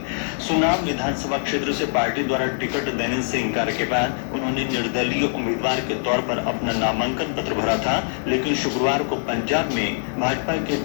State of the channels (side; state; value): right; silent; 63 dB below the other